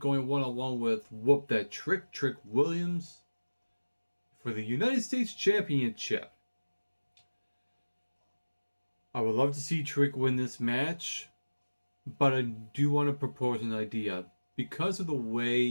one-on-one with Whoop That Trick Williams for the United States Championship. I would love to see Trick win this match, but I do want to propose an idea. Because of the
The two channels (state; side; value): inverted; both; correlation -1.00